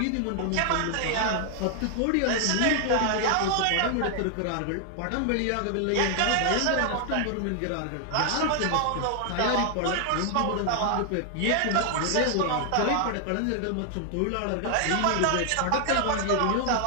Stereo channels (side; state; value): both; different; correlation 0.00